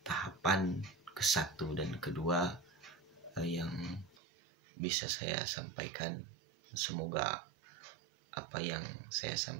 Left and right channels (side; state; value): left; drops out; at 4.2 s